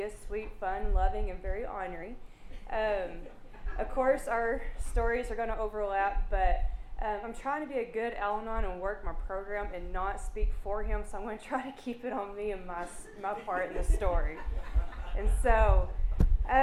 is sweet, fun, loving, and very ornery. Of course, our stories are going to overlap, but I'm trying to be a good Al-Anon and work my program and not speak for him, so I'm going to try to keep it on me and my part in the story. And so,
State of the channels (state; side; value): identical; both; correlation 1.00